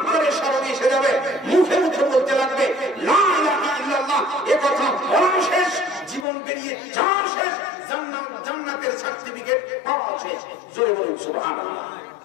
করে স্মরণ এসে যাবে, মুখে মুখে বলতে লাগবে লা ইলাহা ইল্লাল্লাহ, এ কথা বলা শেষ, জীবন বেরিয়ে যাওয়া শেষ, জান্নাতের সার্টিফিকেট পাওয়া শেষ। জোরে বলুন সুবহানাল্লাহ।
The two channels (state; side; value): drops out; right; at 6.2 s